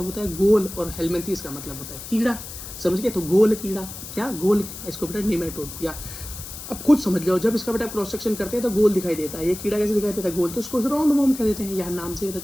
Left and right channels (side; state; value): left; noise; hiss, 11 dB below the sound